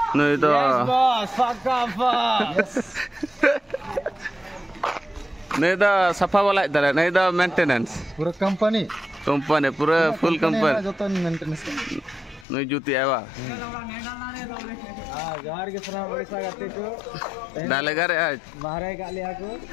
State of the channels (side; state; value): right; drops out; at 12.5 s